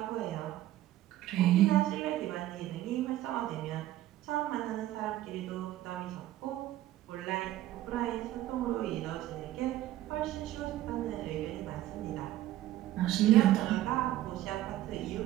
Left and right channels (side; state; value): left; quieter; 14.3 dB